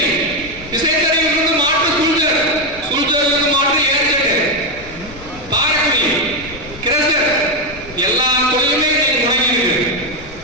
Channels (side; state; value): left; noise; rumble, 17 dB below the sound